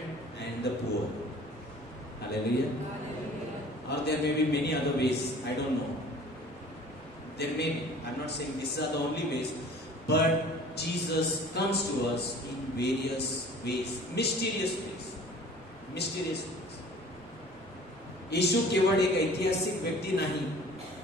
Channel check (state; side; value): normal; both; correlation 0.48